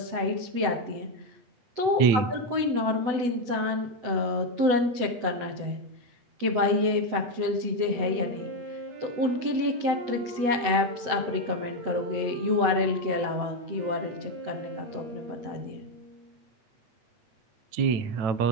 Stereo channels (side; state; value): left; late; 7.9 ms